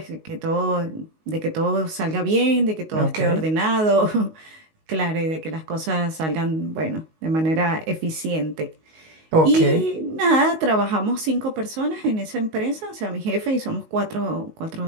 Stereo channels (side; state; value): left; late; 19 ms